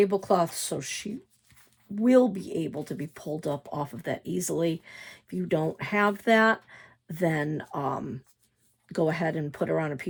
so she will be able to be pulled up off of that easily. If you don't have that, then go ahead and put her on a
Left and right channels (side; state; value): both; identical; correlation 1.00